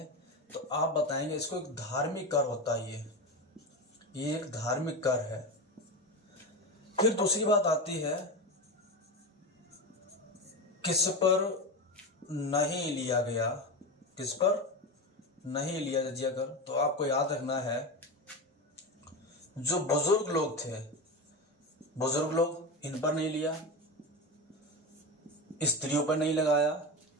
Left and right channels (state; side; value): normal; both; correlation 0.20